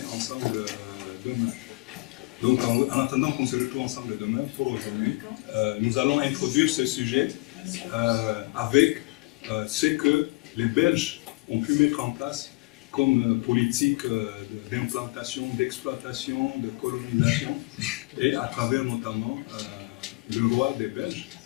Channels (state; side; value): quieter; right; 25.2 dB